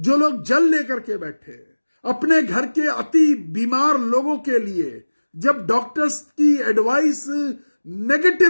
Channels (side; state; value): both; inverted; correlation -1.00